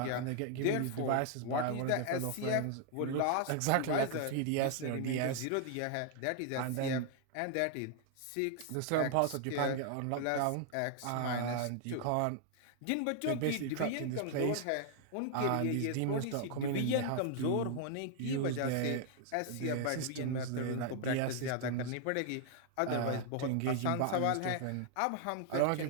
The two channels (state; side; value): different; both; correlation 0.00